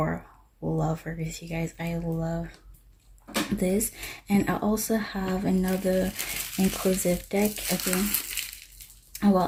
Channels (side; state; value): both; identical; correlation 1.00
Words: lovers, you guys. I love this. And I also have another inclusive deck. Okay,